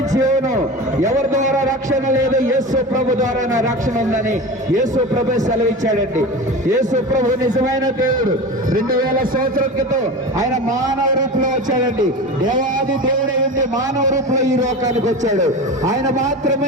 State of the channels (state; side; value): normal; both; correlation 0.29